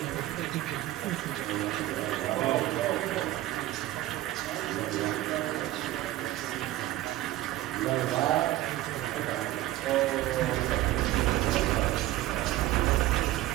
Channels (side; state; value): left; quieter; 15.6 dB